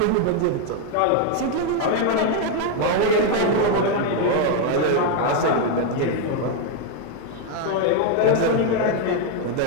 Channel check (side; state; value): both; different; correlation 0.00